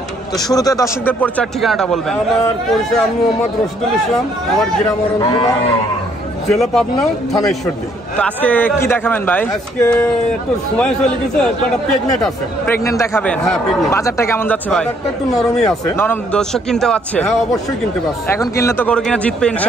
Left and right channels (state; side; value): normal; both; correlation 0.67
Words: তো শুরুতে দর্শকদের পরিচয় ঠিকানাটা বলবেন। আমার পরিচয় আমি মোহাম্মদ রশিদুল ইসলাম। আমার গ্রাম অরণখোলা, জেলা পাবনা, থানা ঈশ্বরদী। তো আজকে কি দেখাবেন ভাই? আজকে একটু সময় চলে গেছে, একটা প্রেগনেন্ট আছে। প্রেগনেন্ট দেখাবেন? হ্যাঁ, প্রেগনেন্ট। বাজারটা কেমন যাচ্ছে ভাই? বাজারটা একটু নরমই আছে। নরম? দর্শক কিনতে পারছে? হ্যাঁ, অবশ্যই কিনতে পারছে। এখন কিনলে তো গরু কিনা জিতবে